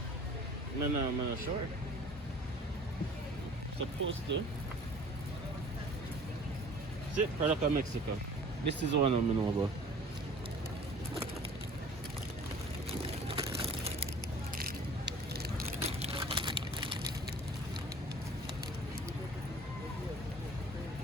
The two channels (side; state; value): both; normal; correlation 0.47